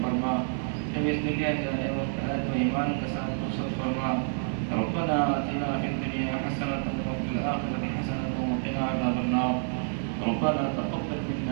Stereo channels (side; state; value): left; silent; 57 dB below the other